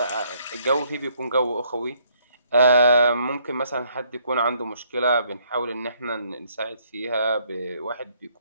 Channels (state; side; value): inverted; both; correlation -0.68